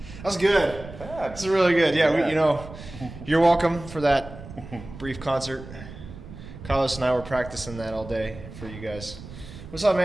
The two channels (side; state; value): right; noise; rumble, 14 dB below the sound